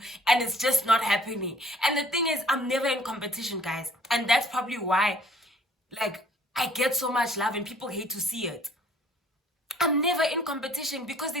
and it's just not happening. And the thing is, I'm never in competition, guys, and that's probably why, like, I get so much love and people hate to see it. I'm never in competition because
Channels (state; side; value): normal; both; correlation 0.57